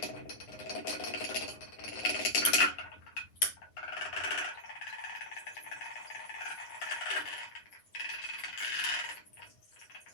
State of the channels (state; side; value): late; right; 9.3 ms